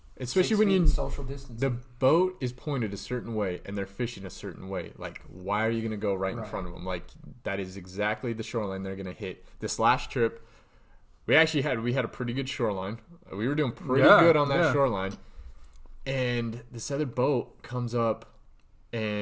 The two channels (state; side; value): identical; both; correlation 1.00